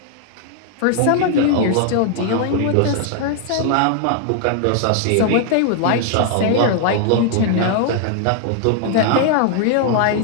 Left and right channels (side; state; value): both; different; correlation 0.00